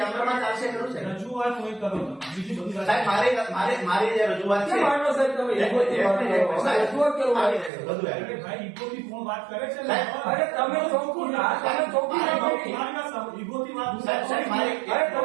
ચાલશે ખરું છે. રજૂઆત કોઈ કરો બીજી બધી વાત. સાહેબ મારી જે રજૂઆત છે ભાઈ ઈગોથી કોણ વાત કરે છે? અરે તમે ચોખ્ખું ના, તમે ચોખ્ખું ના બોલી. ઈગોથી વાત સાહેબ અરે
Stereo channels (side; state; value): left; drops out; at 7.7 s